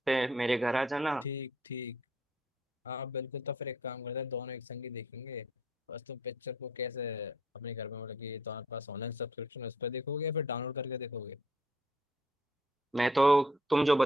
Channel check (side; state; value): both; normal; correlation 0.63